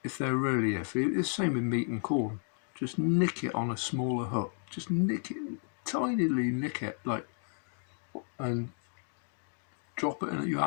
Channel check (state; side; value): silent; right; 56 dB below the other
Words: if they're really iffy. It's the same with meat and corn. Just nick it on a smaller hook. Just nick it, tinily nick it, and drop it in. You